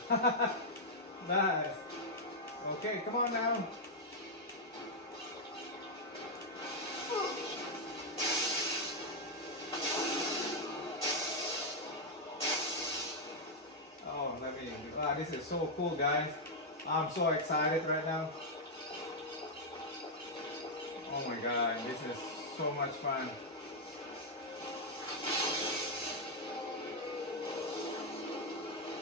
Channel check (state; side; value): normal; both; correlation -0.02